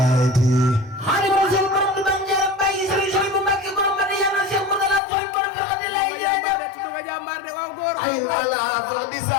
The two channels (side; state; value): right; drops out; at 5.0 s